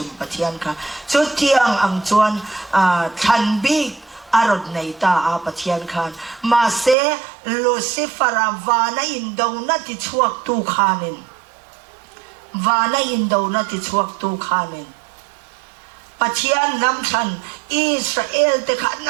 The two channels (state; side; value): drops out; left; at 7.0 s